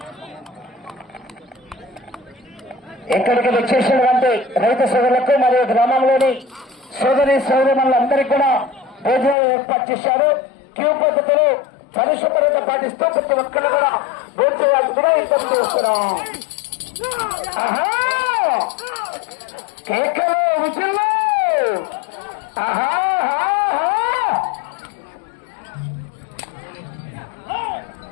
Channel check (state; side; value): drops out; right; at 9.3 s